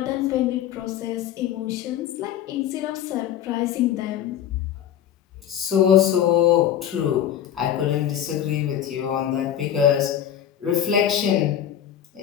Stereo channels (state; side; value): quieter; right; 10.3 dB